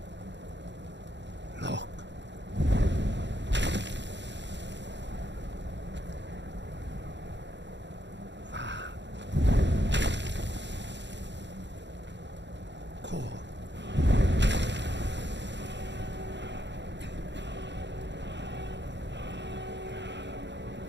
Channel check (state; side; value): late; left; 0.52 ms